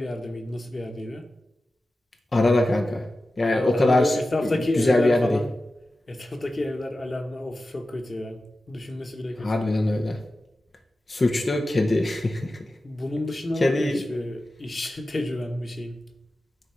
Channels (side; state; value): both; normal; correlation 0.94